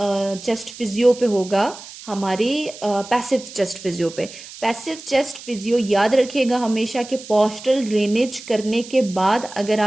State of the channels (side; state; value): right; noise; hiss, 16 dB below the sound